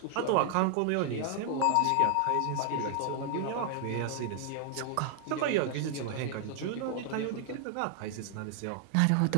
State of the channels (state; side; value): different; both; correlation 0.00